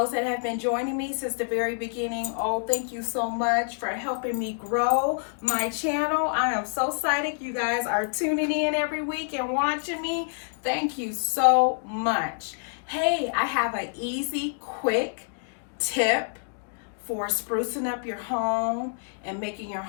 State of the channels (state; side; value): silent; right; digital silence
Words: that have been joining me since the very beginning, oh, thank you so much for helping me grow my channel. I am so excited you guys are tuning in every week and watching me. Thank you so much. Hey, I have an easy, quick tip for sprucing up your home and making your